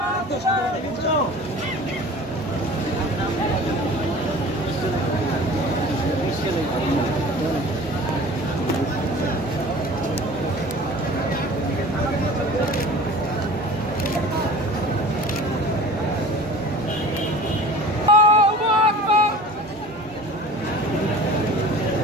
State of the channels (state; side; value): normal; both; correlation 0.42